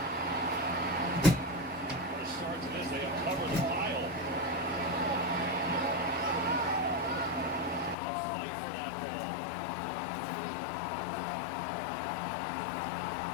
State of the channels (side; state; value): right; drops out; at 8.0 s